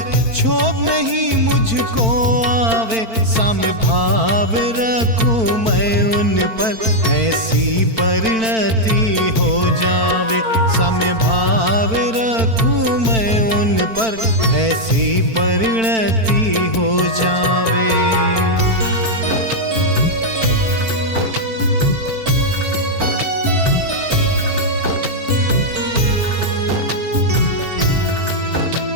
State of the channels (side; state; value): left; late; 4.5 ms